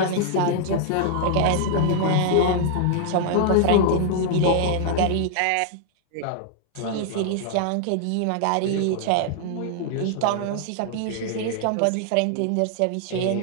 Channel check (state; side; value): different; both; correlation -0.01